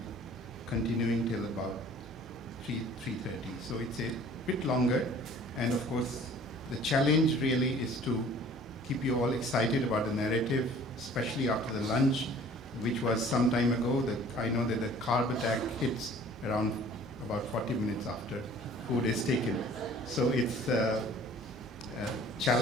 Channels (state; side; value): normal; both; correlation 0.50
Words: continuing till about 3:30. So it's a bit longer, and of course, the challenge really is to keep you all excited about the narrative, especially after the lunch, which was some time ago. I know that the carb attack hits around about 40 minutes after food is taken. So it's a